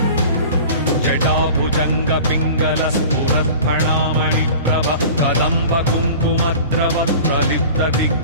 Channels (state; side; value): inverted; both; correlation -0.40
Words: जटाभुजङ्ग पिङ्गल स्फुरत्फणामणि प्रभ कदम्ब कुङ्कुमद्रव प्रलिप्त